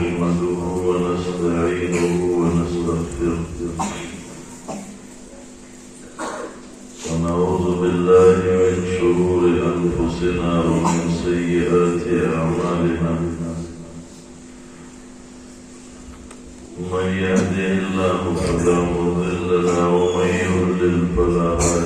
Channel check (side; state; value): both; identical; correlation 1.00